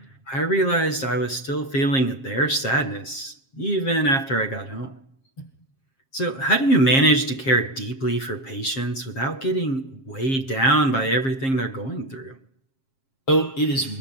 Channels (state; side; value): late; right; 7.5 ms